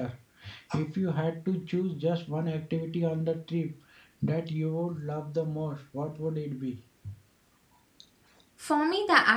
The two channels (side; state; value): both; identical; correlation 1.00